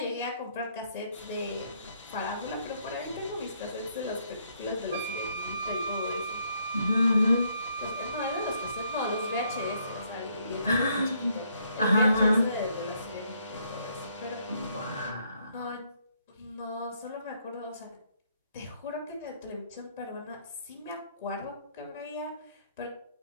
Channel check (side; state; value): both; inverted; correlation -0.71